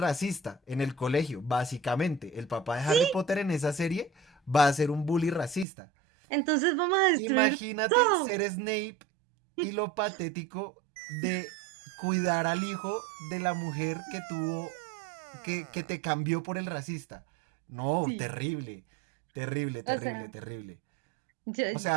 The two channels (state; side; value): drops out; left; at 5.7 s